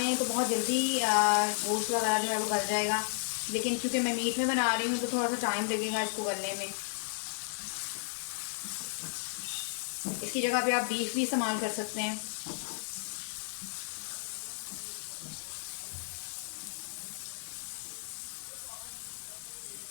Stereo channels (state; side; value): silent; right; 55 dB below the other